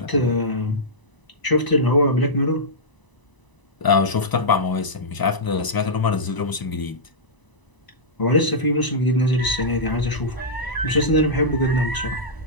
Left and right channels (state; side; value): late; right; 1.0 ms